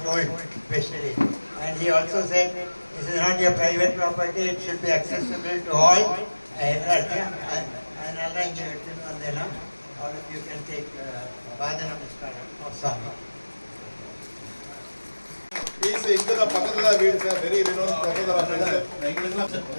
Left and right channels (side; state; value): both; inverted; correlation -1.00